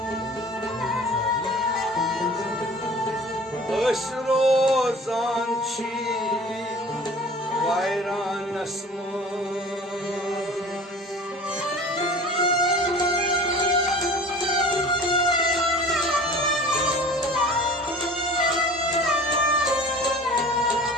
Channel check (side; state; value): both; normal; correlation 0.43